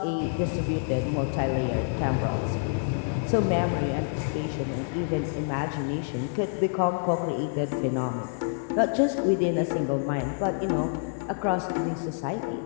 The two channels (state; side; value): silent; right; digital silence